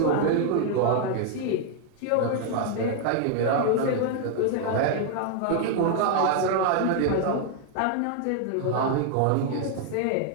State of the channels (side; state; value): both; different; correlation 0.00